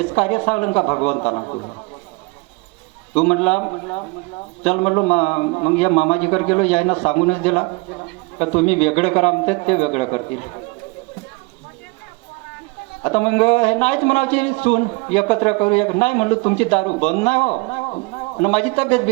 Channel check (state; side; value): quieter; left; 26.9 dB